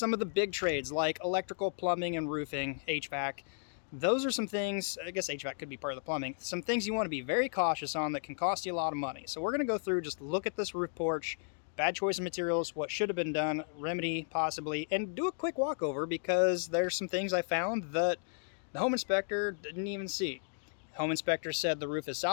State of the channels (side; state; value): right; silent; digital silence